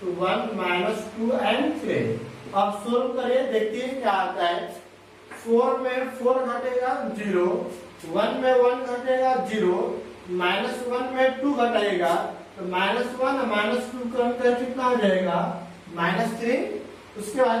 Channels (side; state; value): both; identical; correlation 1.00